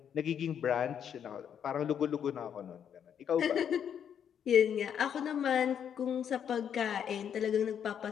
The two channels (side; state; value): right; quieter; 8.5 dB